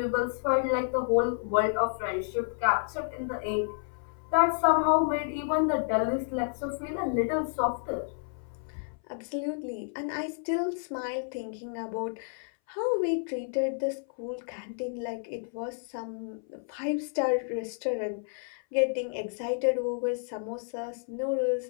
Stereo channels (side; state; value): right; silent; 58 dB below the other